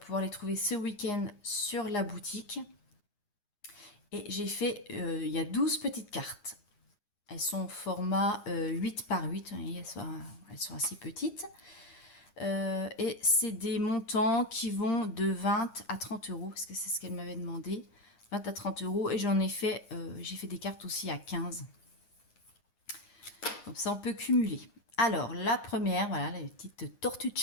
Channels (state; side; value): late; right; 9.7 ms